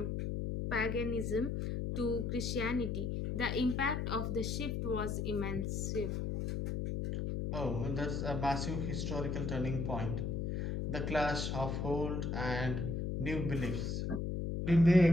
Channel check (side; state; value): left; noise; hum, 1 dB below the sound